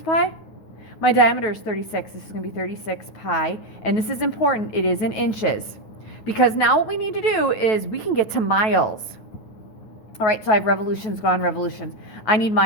My diameter is 36. This is going to be 36 pi. And this is important. It is in inches. Because now what we need to do is we can get to miles. All right, so I have revolutions gone, revolutions. I need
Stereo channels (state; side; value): late; right; 9.2 ms